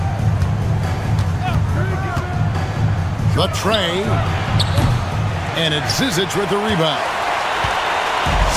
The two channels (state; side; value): identical; both; correlation 1.00